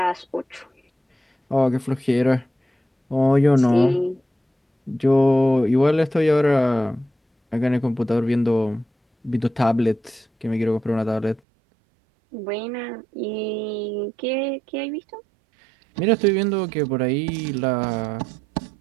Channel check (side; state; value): left; drops out; at 11.4 s